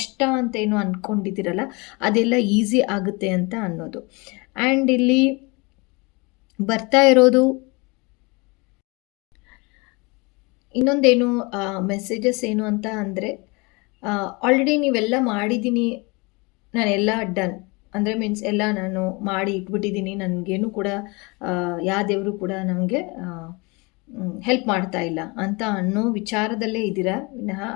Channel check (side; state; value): right; quieter; 27.4 dB